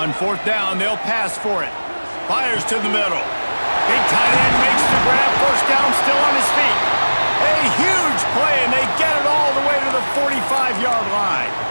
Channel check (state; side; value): inverted; both; correlation -1.00